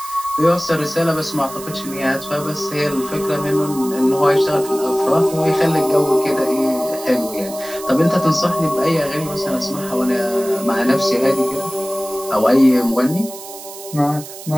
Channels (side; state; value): right; noise; hiss, 14 dB below the sound